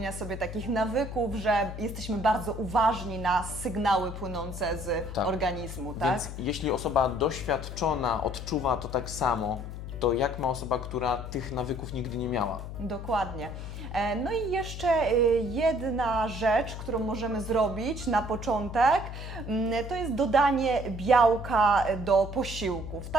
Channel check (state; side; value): noise; left; hum, 8 dB below the sound